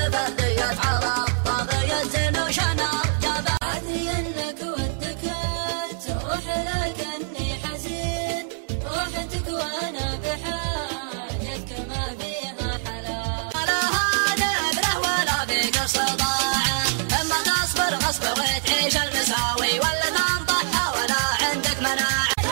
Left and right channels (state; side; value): silent; left; digital silence